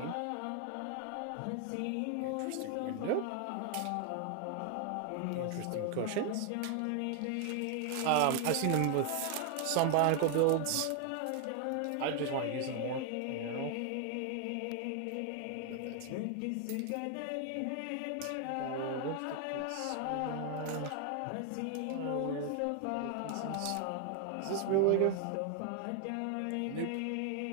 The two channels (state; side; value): different; both; correlation 0.00